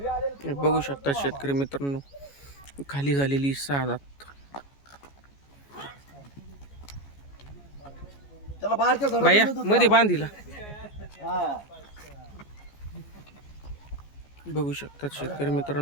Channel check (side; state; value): right; late; 14 ms